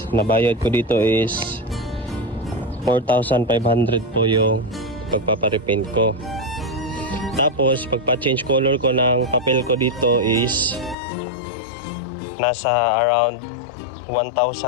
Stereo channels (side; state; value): right; drops out; at 11.0 s